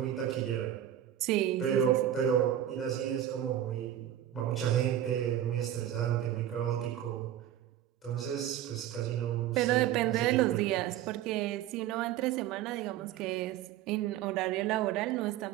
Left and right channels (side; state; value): left; quieter; 11.5 dB